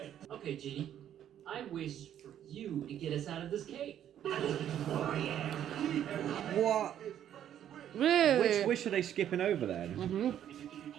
Okay, Genie. I wish for you to get us out of this cave. What? Really? Which wish are they skipping over then?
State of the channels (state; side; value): quieter; left; 10.5 dB